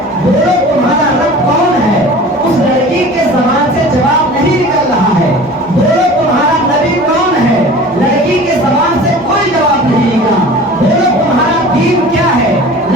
بولو تمہارا رب کون ہے، اس لڑکی کے زبان سے جواب نہیں نکل رہا ہے، بولو تمہارا نبی کون ہے، لڑکی کے زبان سے کوئی جواب نہیں نکلا، بولو تمہارا دین کیا ہے،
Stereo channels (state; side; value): normal; both; correlation 0.41